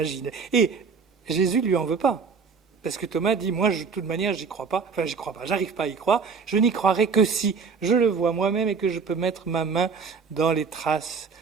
Et Jésus ne lui en veut pas. Parce que Thomas dit, moi, de toute manière, j'y crois pas, j'arrive pas à y croire, je n'y croirai que si je le vois moi-même et que je peux mettre ma main dans les traces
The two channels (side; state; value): left; quieter; 5.4 dB